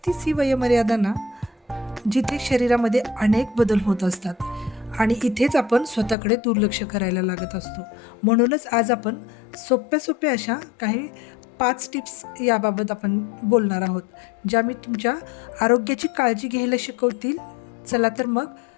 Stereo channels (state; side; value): drops out; right; at 6.2 s